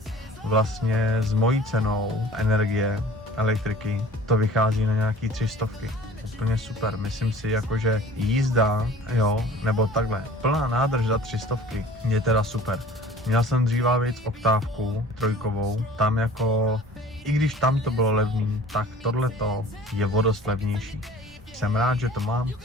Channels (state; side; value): normal; both; correlation 0.47